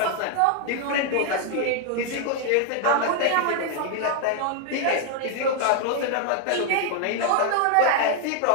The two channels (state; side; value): different; both; correlation 0.00